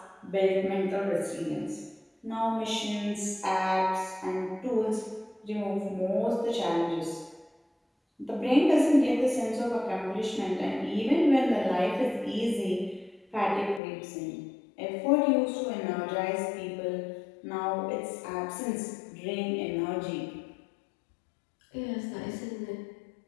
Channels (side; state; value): right; drops out; at 13.8 s